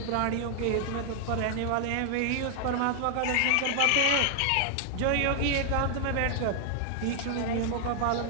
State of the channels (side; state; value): both; different; correlation 0.00